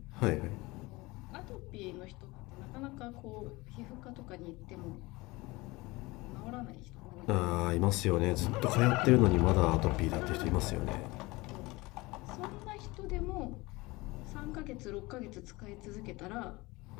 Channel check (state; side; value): quieter; right; 22.4 dB